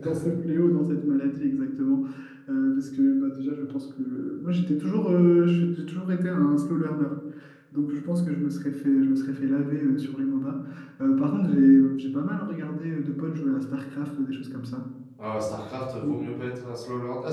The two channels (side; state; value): both; identical; correlation 1.00